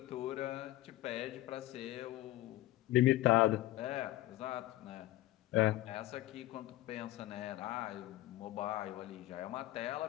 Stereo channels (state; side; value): quieter; right; 16.4 dB